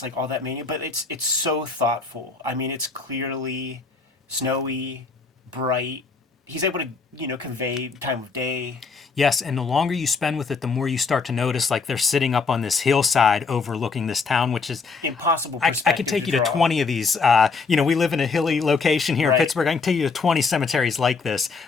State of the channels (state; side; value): quieter; right; 4.6 dB